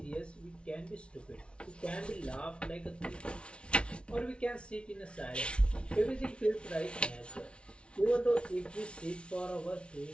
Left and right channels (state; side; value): late; right; 0.058 ms